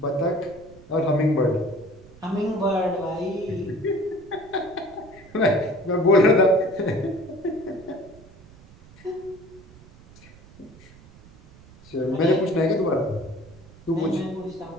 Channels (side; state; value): right; noise; rumble, 23 dB below the sound